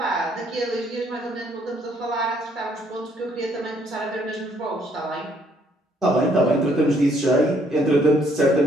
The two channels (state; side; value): normal; both; correlation 0.67